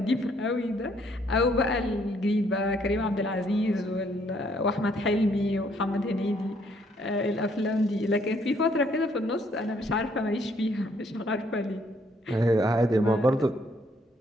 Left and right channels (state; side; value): normal; both; correlation 0.67